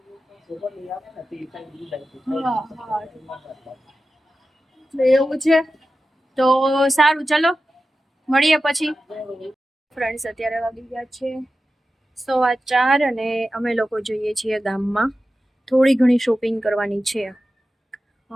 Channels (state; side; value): normal; both; correlation 0.93